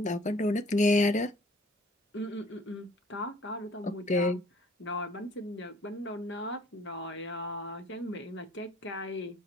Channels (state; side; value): normal; both; correlation 0.56